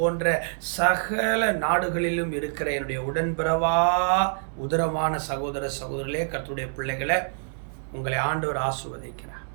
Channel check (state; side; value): silent; left; digital silence